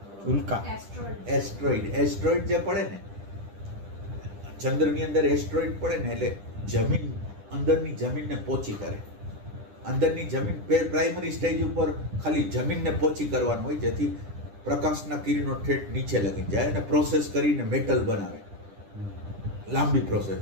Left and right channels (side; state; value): left; late; 10 ms